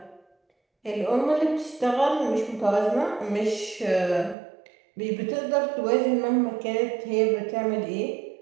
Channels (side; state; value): left; drops out; at 4.4 s